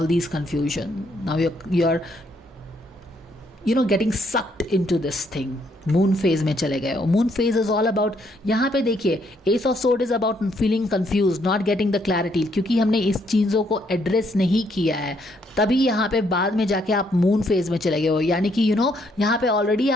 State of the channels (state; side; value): normal; both; correlation 0.71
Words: these confusion. Now you're getting sucked into this thing. Moon phase में चले गए हो. Moon phase is all about, यहाँ पे देखिए ace of sword is about feeling confuse, not getting the clarity, क्योंकि हमने इस चीज़ों को एड्रेस नहीं किया है, तभी यहाँ पे बाद में जाके आप मून फेज में चले गए हो. यानी कि यहाँ पे ऑलरेडी